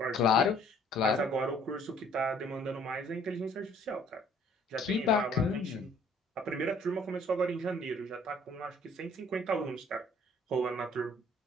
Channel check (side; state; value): both; normal; correlation 0.58